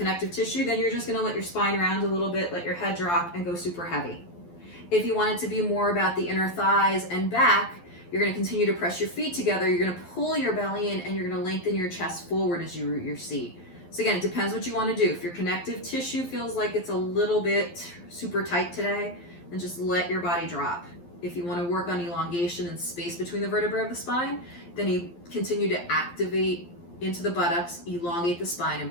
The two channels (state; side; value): late; right; 12 ms